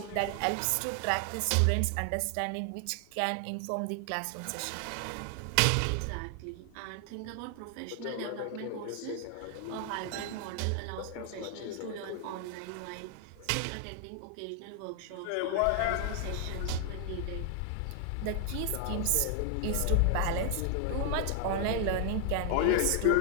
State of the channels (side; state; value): both; different; correlation 0.00